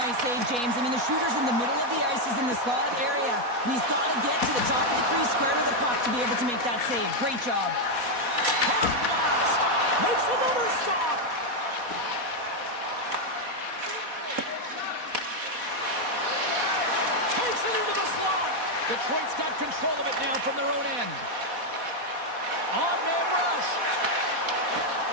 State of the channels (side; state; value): left; late; 4.1 ms